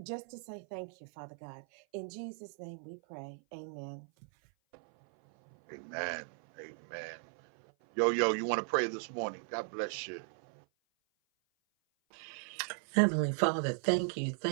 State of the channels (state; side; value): silent; left; 53 dB below the other